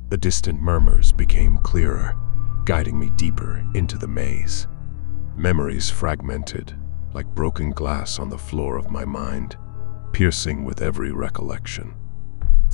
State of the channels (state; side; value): silent; right; digital silence